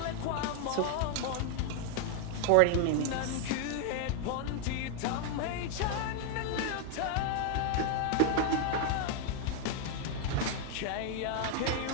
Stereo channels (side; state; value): both; different; correlation 0.00